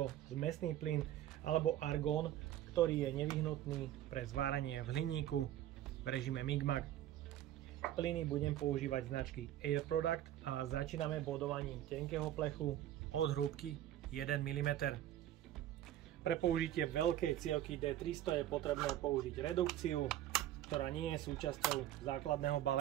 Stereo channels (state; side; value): quieter; left; 12.6 dB